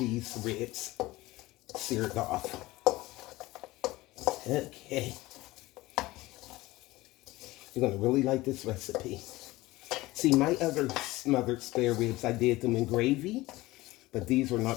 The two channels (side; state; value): right; quieter; 19.1 dB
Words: ribs seared off. Okay. You're going to really like this recipe. See, my other smothered spare ribs, I did them in gravy. But these are